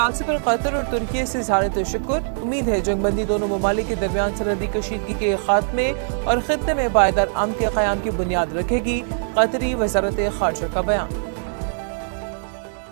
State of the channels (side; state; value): left; silent; digital silence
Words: पर कतर और तुर्की से इज़हार तशक्कुर। उम्मीद है जंगबंदी दोनों ममालिक के दरमियान सरहदी कशीदगी के खात्मे और खित्ते में पायदार अमन के क़याम की बुनियाद रखेगी। कतरी वज़ारत ख़ारजा का बयान।